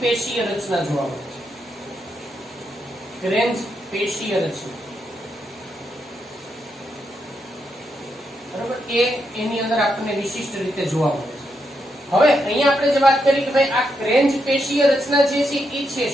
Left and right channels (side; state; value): both; normal; correlation 0.81